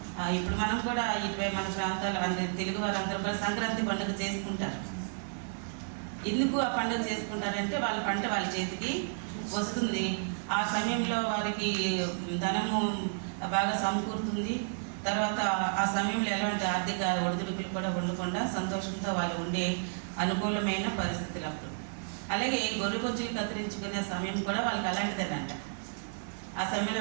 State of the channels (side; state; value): left; silent; 57 dB below the other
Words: ఇప్పుడు మనం కూడా ఇటువై మన ప్రాంతాలు తెలుగు వారందరూ కూడా సంక్రాంతి పండుగ చేసుకుంటారు. ఎందుకు ఆ పండుగ చేసుకుంటారంటే వాళ్ళ పంట వాళ్ళ చేతికి వస్తుంది. ఆ సమయంలో వారికి ధనము బాగా సమకూరుతుంది. తర్వాత ఆ సమయంలో ఎలాంటి ఆర్థిక ఒడిదుడుకులు కూడా ఉండకుండా సంతోషంతో వాళ్ళు ఉండే అనుకూలమైన పరిస్థితులు అప్పుడు. అలాగే గొర్రె బొచ్చులు కత్తిరించుకునే సమయం కూడా వాళ్ళకి అలాంటిదేనంట. ఆ సమయంలో